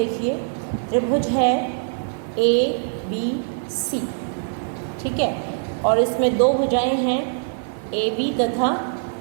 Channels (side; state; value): left; silent; digital silence